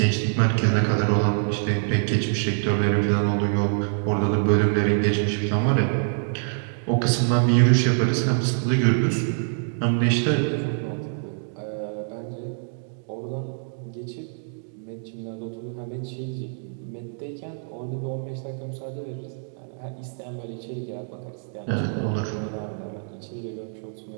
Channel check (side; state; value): left; silent; digital silence